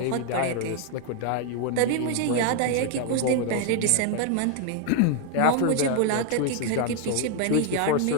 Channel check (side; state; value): both; different; correlation 0.01